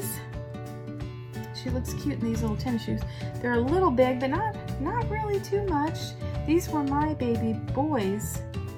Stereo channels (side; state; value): both; identical; correlation 1.00